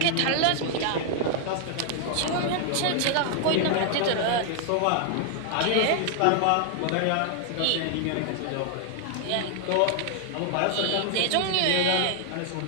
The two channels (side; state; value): both; different; correlation 0.00